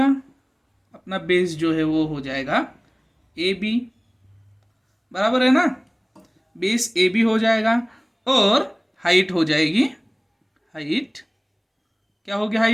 अपना बेस जो है वो हो जाएगा ए बी, बराबर है ना। बेस ए बी हो जाएगा और हाइट हो जाएगी, हाइट क्या होगी,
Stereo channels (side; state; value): both; identical; correlation 1.00